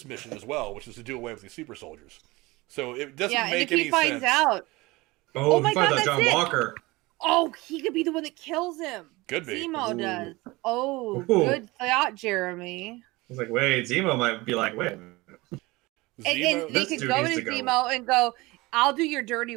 mission as well, which is to do away with these super soldiers. So it doesn't make any sense. Yeah, and if he finds out... Oh my God, that's John Walker. Oh, he could be the one that kills him. Could be. Zemo does. Oh, good thought, Jeremy. I was like, wait, Zemo might be like, wait. And they could go to Zemo and go, I'll do your dirty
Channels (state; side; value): quieter; left; 21.9 dB